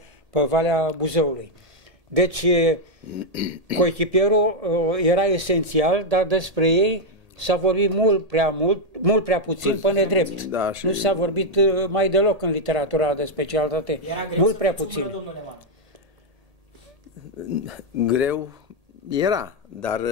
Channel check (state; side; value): late; left; 1.8 ms